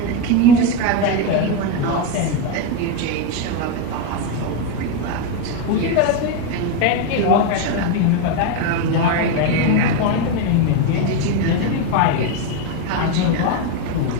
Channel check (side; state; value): both; different; correlation 0.03